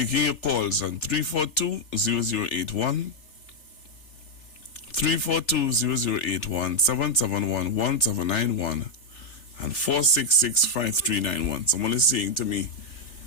your calls on 342-0081, 342-0081, 771-1791, and 466-5391. Someone is saying to me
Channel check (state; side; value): late; right; 3.4 ms